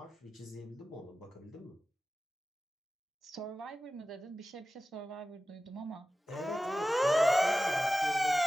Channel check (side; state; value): both; normal; correlation 0.95